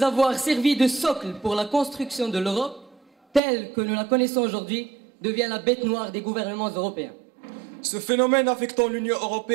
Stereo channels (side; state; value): left; drops out; at 3.4 s